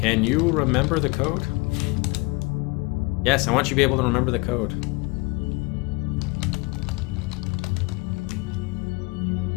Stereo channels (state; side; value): quieter; right; 26.3 dB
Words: you remember the code? Yes, I want you to be able to remember the code.